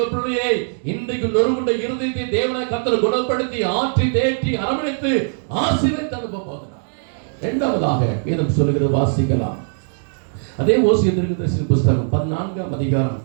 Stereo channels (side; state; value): left; silent; digital silence